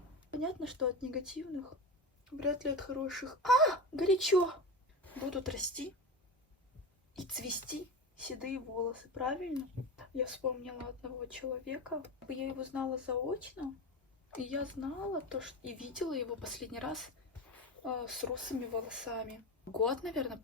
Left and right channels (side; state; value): both; normal; correlation 0.24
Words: Понятно, что от негативных, вряд ли от хороших. Горячо! Будут расти и цвести седые волосы, правильно? Я вспомнила одного человека. Я его знала заочно, и я знала то, что и видела его последний раз с русыми волосами. Год, наверное,